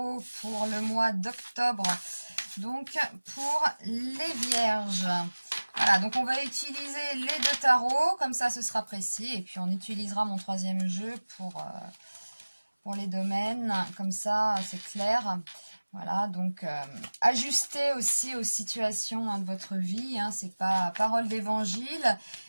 pour le mois d'octobre, donc pour les vierges. Voilà, donc on va utiliser les deux tarots, comme ça ce sera précis, et puis on utilisera mon troisième jeu pour les domaines, comme ça c'est clair. Voilà, donc ajustez aussi aux situations de votre vie, c'est pas parole d'évangile.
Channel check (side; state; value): both; inverted; correlation -1.00